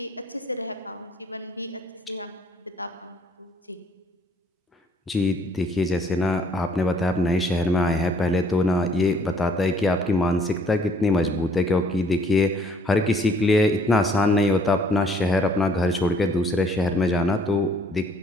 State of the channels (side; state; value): both; normal; correlation 0.61